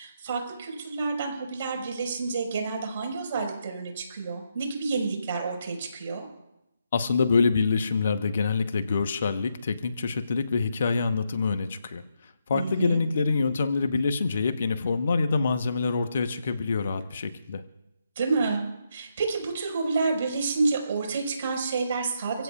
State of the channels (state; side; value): inverted; both; correlation -0.80